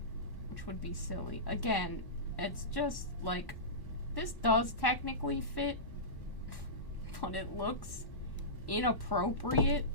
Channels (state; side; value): late; right; 1.1 ms